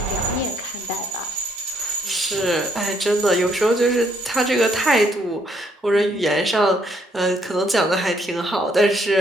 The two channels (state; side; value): normal; both; correlation 0.70